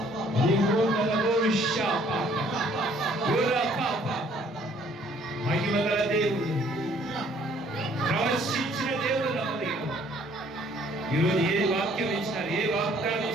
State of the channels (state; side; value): normal; both; correlation 0.60